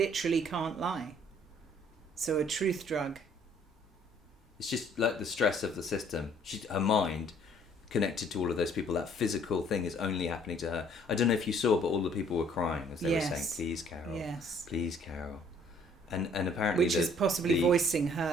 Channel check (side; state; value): both; normal; correlation 0.60